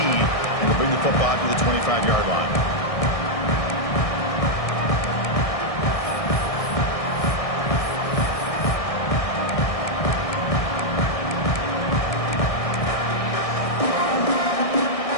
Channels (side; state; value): right; late; 1.6 ms